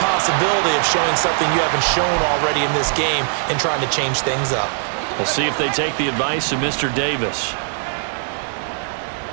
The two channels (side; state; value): left; silent; 66 dB below the other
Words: of showing something you haven't shown already in this game and trying to change things up. We'll see if they take the advice of Mr. Davis.